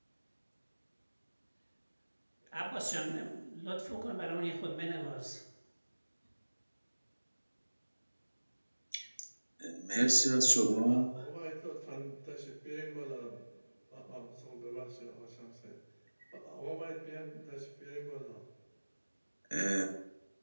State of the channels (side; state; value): both; inverted; correlation -1.00